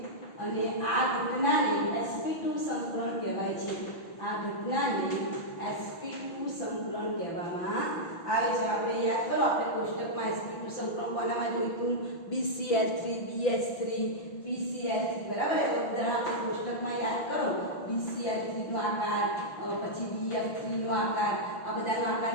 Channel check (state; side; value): late; right; 6.0 ms